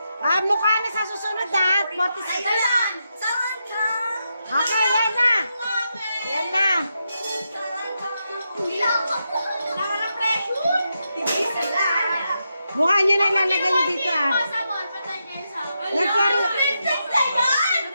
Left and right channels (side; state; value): both; inverted; correlation -0.85